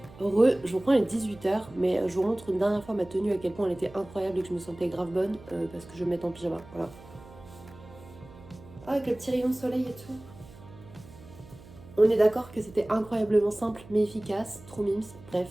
Heureux, je vous reprends, il est 18h, mais je vous montre une dernière fois ma tenue, à quel point elle était incroyable et que je me sentais grave bonne, parce que je vais me mettre en pyjama, voilà. Ah, avec le petit rayon de soleil et tout. On est d'accord que c'était incroyablement simple mais efficace, trop mimes, bref,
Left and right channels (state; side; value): noise; right; hum, 20 dB below the sound